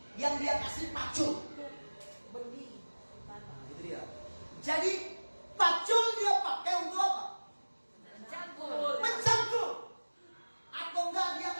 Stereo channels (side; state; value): both; inverted; correlation -1.00